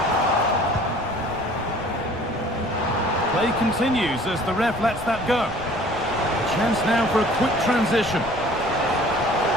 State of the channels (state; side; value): noise; left; rumble, 16 dB below the sound